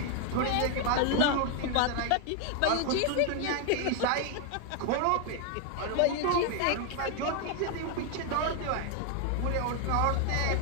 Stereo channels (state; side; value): different; both; correlation 0.01